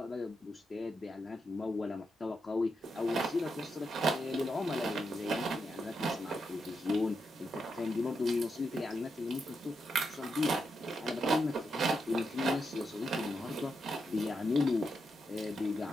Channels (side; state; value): both; normal; correlation 0.84